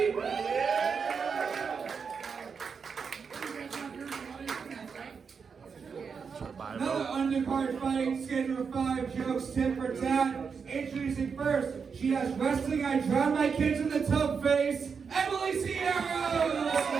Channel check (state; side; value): quieter; left; 5.9 dB